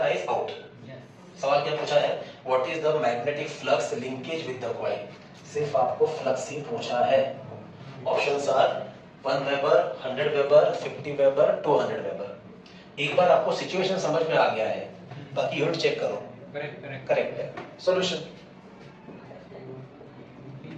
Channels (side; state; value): both; identical; correlation 1.00